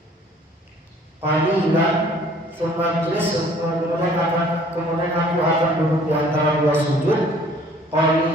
Qalilan, tsumma majlis, kemudian aku akan duduk di antara 2 sujud.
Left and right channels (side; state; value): both; normal; correlation 0.55